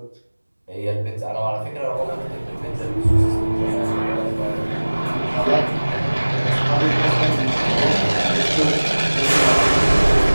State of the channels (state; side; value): inverted; both; correlation -1.00